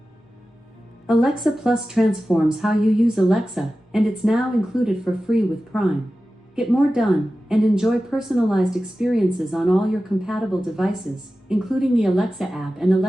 Alexa Plus transforms how you use Alexa, and it's now included for free with Prime. Get more done and enjoy personalized experiences on all your compatible devices, including the Alexa app and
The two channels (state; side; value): normal; both; correlation 0.94